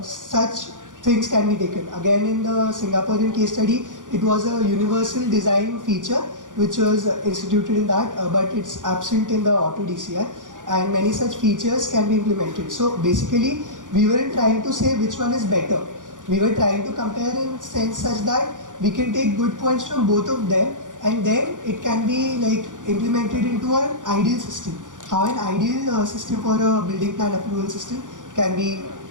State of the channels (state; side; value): late; left; 0.87 ms